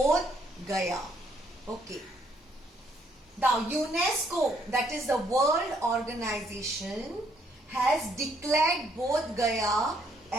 Gaya. Okay. Now UNESCO, that is the World Organization, has declared Bodh Gaya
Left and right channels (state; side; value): normal; both; correlation 0.68